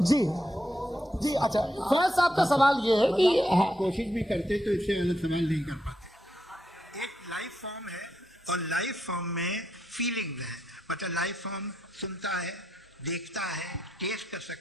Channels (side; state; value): both; normal; correlation 0.81